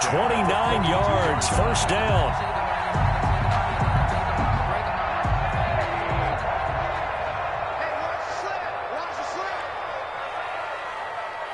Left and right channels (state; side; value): identical; both; correlation 1.00